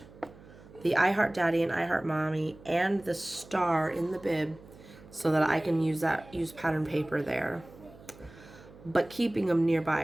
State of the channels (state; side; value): noise; right; hum, 21 dB below the sound